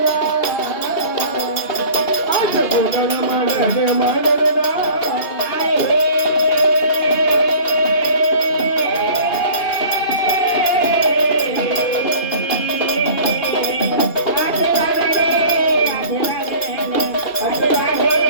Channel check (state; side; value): late; right; 2.7 ms